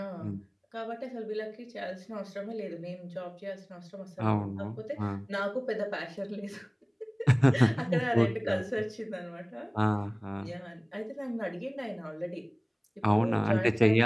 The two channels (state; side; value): identical; both; correlation 1.00